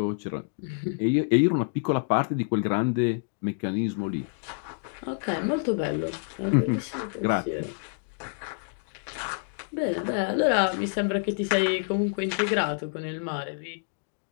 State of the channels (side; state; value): right; silent; digital silence